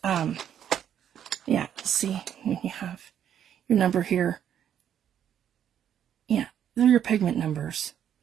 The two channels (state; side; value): quieter; left; 9.5 dB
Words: yeah, see when you have your number here, yeah, they're your pigment numbers.